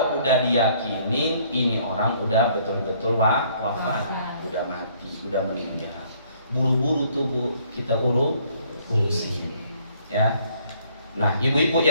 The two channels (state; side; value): inverted; both; correlation -0.63